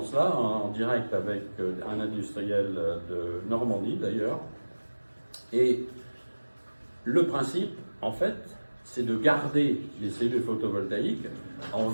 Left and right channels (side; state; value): both; inverted; correlation -1.00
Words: en direct avec un industriel de Normandie d'ailleurs. Et le principe, en fait, c'est de garder les cellules photovoltaïques en